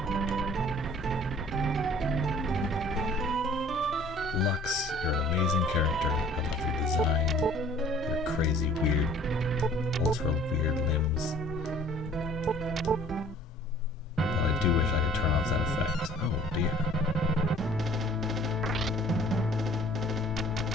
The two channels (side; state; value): both; normal; correlation 0.53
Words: Lux, you're an amazing character. I love your design, your crazy, weird, ultra weird limbs. But I do wish I could turn off that effect. Oh dear.